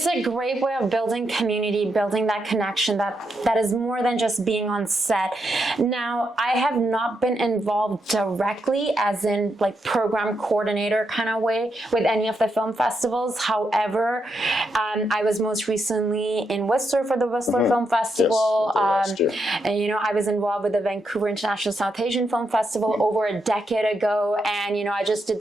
a great way of building community, building that connection that is more than just being on set. Now, I have not been involved directly as in like program coordinator kind of way with any of the film festivals. However, I was most recently in Whistler for the Whistler Film Festival. Yes, and you know, I was involved with the Vancouver International South Asian Film Festival over a decade ago. And, you know, I just did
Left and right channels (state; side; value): normal; both; correlation 0.82